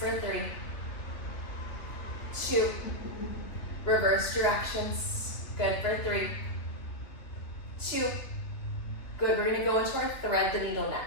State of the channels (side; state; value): right; late; 2.8 ms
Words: 3, 2, reverse directions. Good for 3, 2. Good, we're gonna go into our thread the needle